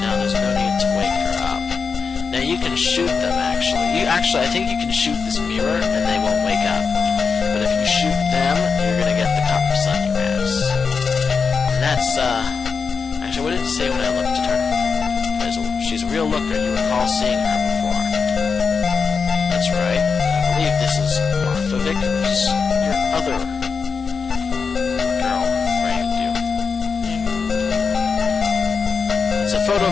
Now there's no need to wake her up. Now you can shoot them, actually. I think you can shoot this mirror and they won't wake up. But if you shoot them, you're gonna get the cops on your ass. And that's, actually, what did it say when I looked at her? She's a real looker. You recall seeing her before. That's right. I believe this is Martha Vickers. Your other girl framed you. It's a photo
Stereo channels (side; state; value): right; quieter; 5.4 dB